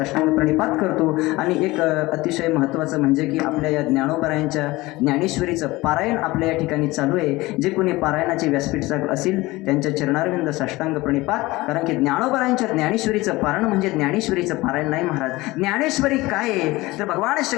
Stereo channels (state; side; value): quieter; right; 20.4 dB